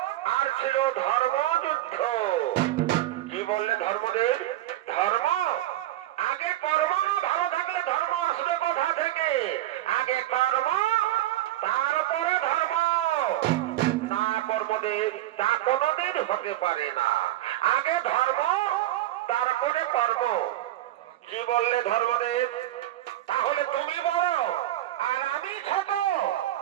আর ছিল ধর্মযুদ্ধ। কি বললে ধর্মদেব? ধর্ম আগে কর্ম না ভালো থাকলে ধর্ম আসবে কোথা থেকে? আগে কর্ম তারপরে ধর্ম। না কর্মদেব, তা কোনদিন হতে পারে না। আগে ধর্ম তারপরে কর্ম। কি বললে ধর্মদেব? তাহলে তুমি বড় আর আমি ছোট?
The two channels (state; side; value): quieter; left; 14.5 dB